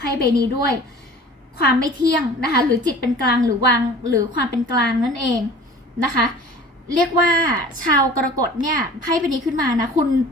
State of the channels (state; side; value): normal; both; correlation 0.44